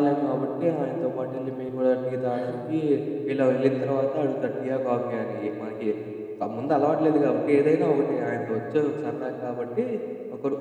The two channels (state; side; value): identical; both; correlation 1.00